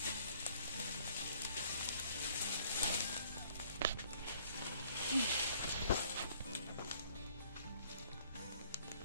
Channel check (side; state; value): both; inverted; correlation -0.60